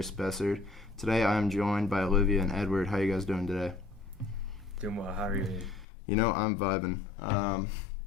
Spessard. Today I am joined by Olivia and Edward. How are you guys doing today? Doing well. How are you? You know, I'm vibing.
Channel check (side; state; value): right; drops out; at 5.9 s